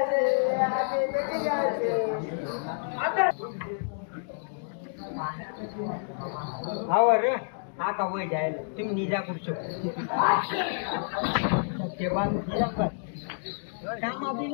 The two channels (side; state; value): right; silent; digital silence